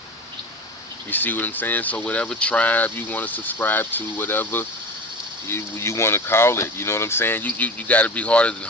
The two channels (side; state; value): both; normal; correlation 0.31